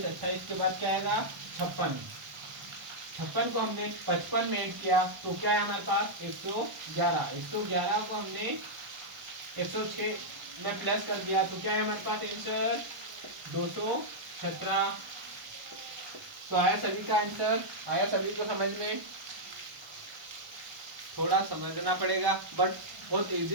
28 के बाद क्या आएगा 56। 56 को हमने 55 में ऐड किया तो क्या है हमारे पास 111। 111 को हमने 106 में प्लस कर दिया तो क्या है हमारे पास आंसर 217। तो आया सभी का आंसर, आया सभी को समझ में। थोड़ा समझना पड़ेगा बट बहुत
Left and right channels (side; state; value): left; late; 1.0 ms